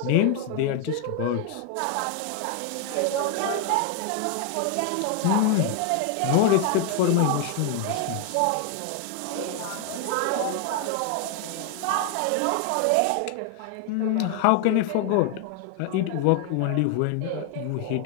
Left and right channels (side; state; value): both; different; correlation 0.00